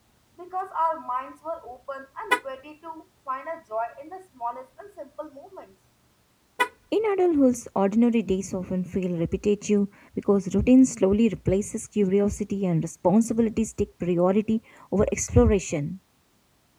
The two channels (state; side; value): identical; both; correlation 1.00